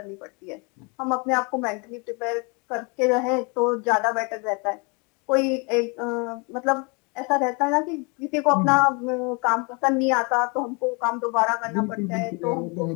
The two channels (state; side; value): quieter; right; 31.6 dB